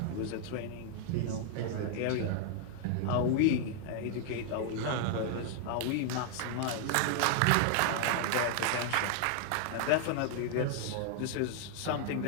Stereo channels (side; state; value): both; different; correlation 0.00